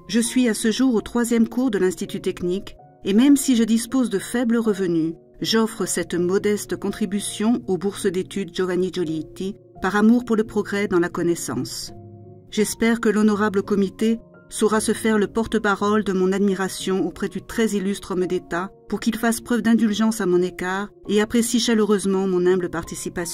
Je suis à ce jour au 3e cours de l'Institut technique et même si je dispose de faibles revenus, j'offre cette modeste contribution aux bourses d'études Giovanni Giolitti par amour pour le progrès dans la connaissance. J'espère que l'honorable comité saura se faire le porte-parole de mon admiration auprès du très illustre homme d'État pour qu'il fasse preuve d'indulgence à mon égard et apprécie chaleureusement mon humble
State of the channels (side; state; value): both; identical; correlation 1.00